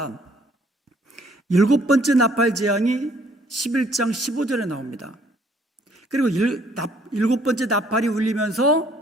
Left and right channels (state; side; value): normal; both; correlation 0.63